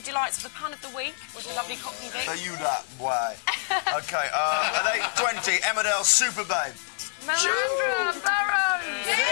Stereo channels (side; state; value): right; silent; digital silence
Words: delights of the pun of the week with a lovely Cockney Vic. So you that, boy. OK, at 8:20, Emmerdale Super Babe. Melandra Burrows!